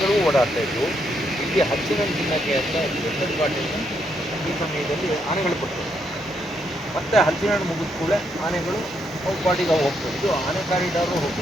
ಓಡಾಡ್ತಾ ಇದ್ವು. ಇಲ್ಲಿ ಹಚ್ಚಿನ ತಿನ್ನಕ್ಕೆ ಅಂತ ಎತ್ತದ ಬಾಟೆಯನ್ನು ಈ ಸಮಯದಲ್ಲಿ ಆನೆಗಳು ಕೊಡ್ತವೆ. ಮತ್ತೆ ಹಲಸಿನಹಣ್ಣು ಮುಗಿದ ಕೂಡಲೇ ಆನೆಗಳು ಅವು ಪಾಟಿಗೆ ಹೋಗ್ತವೆ. ಇದು ಆನೆ ಕಾರಿಡಾರು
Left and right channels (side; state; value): both; normal; correlation 0.77